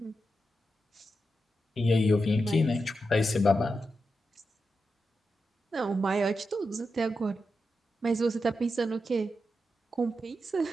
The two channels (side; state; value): both; normal; correlation 0.88